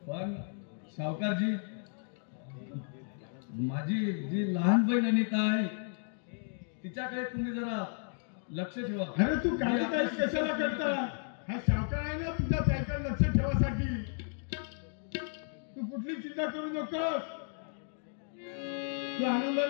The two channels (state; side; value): silent; right; 55 dB below the other